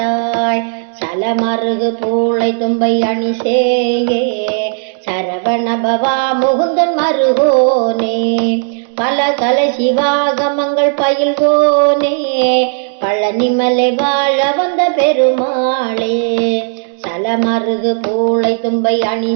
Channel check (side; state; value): left; silent; 56 dB below the other